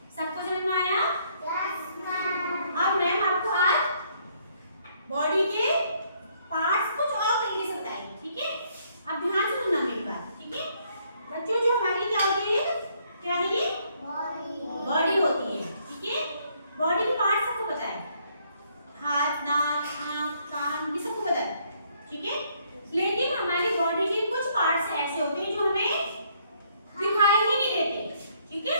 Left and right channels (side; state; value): both; inverted; correlation -0.68